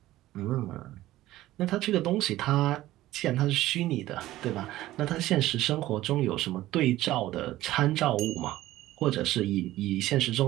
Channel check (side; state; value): left; quieter; 15.6 dB